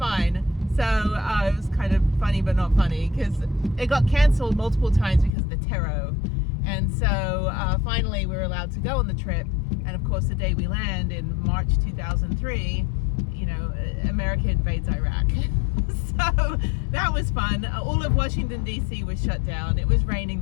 So it was kind of funny, but not funny, because it got canceled multiple times because of the terror. And so finally we were allowed to go on the trip. And of course, the day we land in March 2003, you know, America invades Iraq. So that was fun. All of Washington, D.C. was shut down. It was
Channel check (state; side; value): drops out; right; at 5.3 s